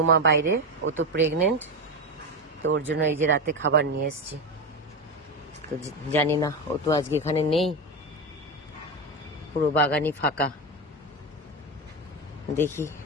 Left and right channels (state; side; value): normal; both; correlation 0.15